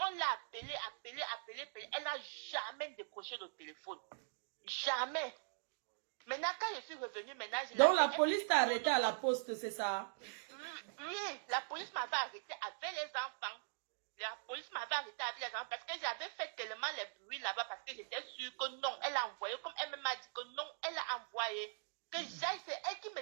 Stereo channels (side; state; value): left; silent; digital silence